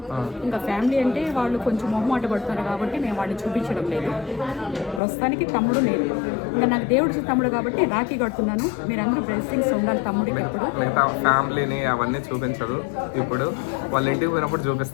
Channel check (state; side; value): drops out; right; at 5.0 s